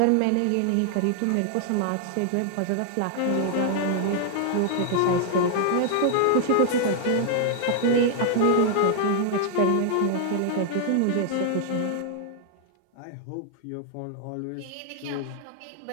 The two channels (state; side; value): different; both; correlation -0.01